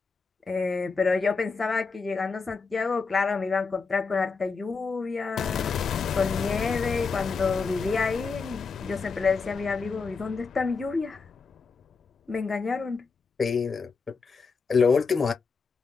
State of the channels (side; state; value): right; quieter; 4.8 dB